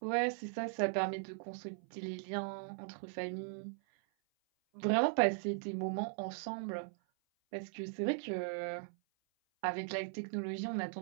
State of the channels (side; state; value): left; silent; 52 dB below the other